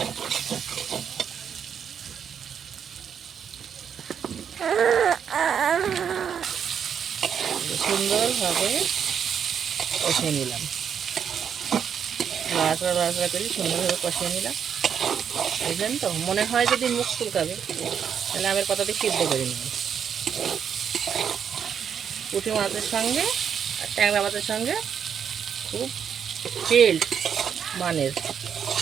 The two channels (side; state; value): left; quieter; 7.8 dB